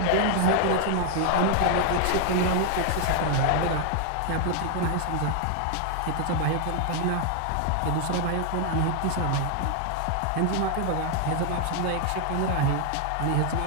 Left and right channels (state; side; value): different; both; correlation 0.00